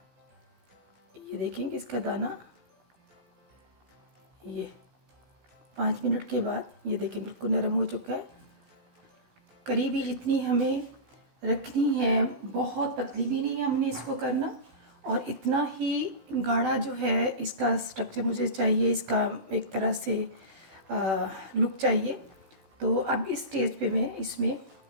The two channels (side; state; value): left; late; 16 ms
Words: ये देखेंगे इसका दाना, ये 5 मिनट के बाद ये देखिए बिल्कुल नरम हो चुका है। करीबी जितनी हमें रखनी है, बहुत पतली भी नहीं है हमने इसको करना, और इतना ही गाढ़ा जो है इसका स्ट्रक्चर मुझे चाहिए, इसका एक तरह से लुक चाहिए। तो अब इस स्टेज पे मैं इसमें